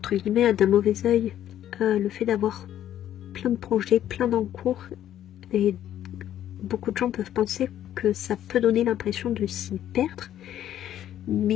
guillemets, d'un mauvais œil le fait d'avoir plein de projets, plein d'encours, et beaucoup de gens peuvent penser que ça peut donner l'impression de s'y perdre,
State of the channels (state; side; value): quieter; right; 11.4 dB